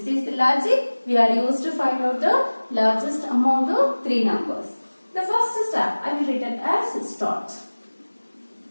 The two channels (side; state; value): both; inverted; correlation -1.00